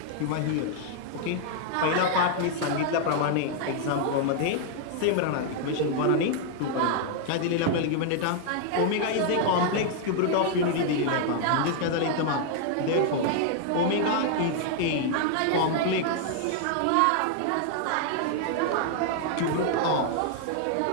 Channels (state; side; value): different; both; correlation 0.00